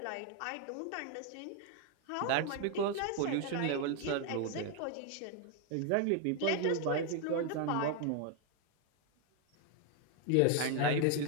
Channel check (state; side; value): different; both; correlation 0.01